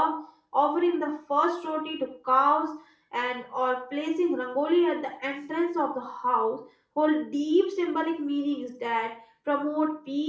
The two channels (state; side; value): identical; both; correlation 1.00